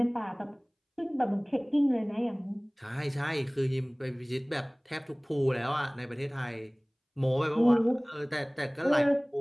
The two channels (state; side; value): identical; both; correlation 1.00